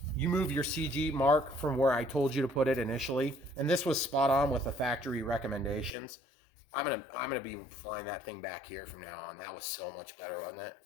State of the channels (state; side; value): drops out; right; at 5.9 s